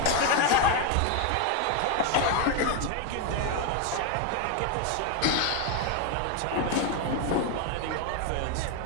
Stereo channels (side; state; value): both; different; correlation 0.01